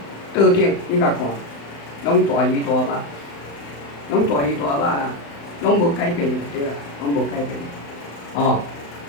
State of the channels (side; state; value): right; late; 35 ms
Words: 桌顶你甲看，拢大鱼大肉，拢大鱼大肉啦。拢无改变就对啦，拢无改变。哦，